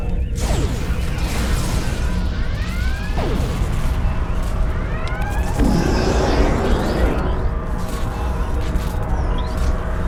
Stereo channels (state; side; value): identical; both; correlation 1.00